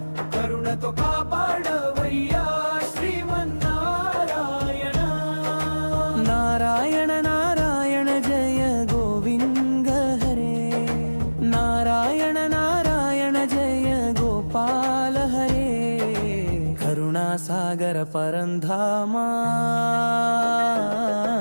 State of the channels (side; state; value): both; inverted; correlation -1.00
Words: కరుణతో కాపాడవయ్యా శ్రీమన్నారాయణ నారాయణ నారాయణ జయ గోవింద హరే నారాయణ నారాయణ జయ గోపాల హరే కరుణాసాగర పరంధామా